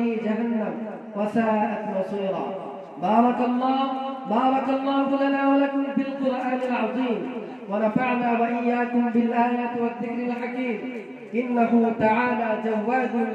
جهنم وساءت مصيرا. بارك الله لنا ولكم في القرآن العظيم، ونفعنا وإياكم بالآيات والذكر الحكيم. إنه تعالى جواد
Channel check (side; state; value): both; identical; correlation 1.00